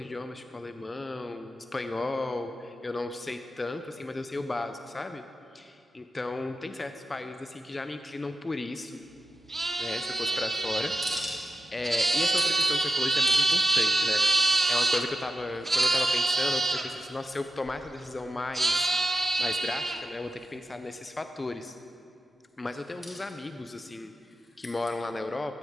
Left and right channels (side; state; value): both; normal; correlation 0.90